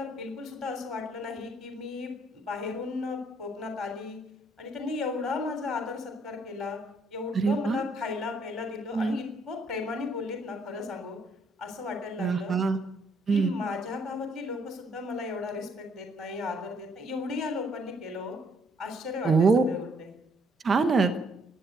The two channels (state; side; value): normal; both; correlation 0.68